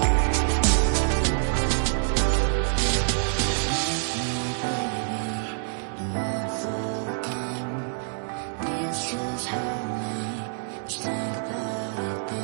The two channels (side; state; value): left; silent; digital silence